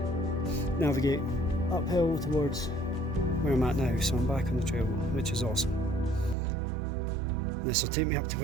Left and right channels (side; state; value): left; drops out; at 6.4 s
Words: navigate uphill towards where I'm at now. So I'm back on the trail, which is awesome. This will take me up to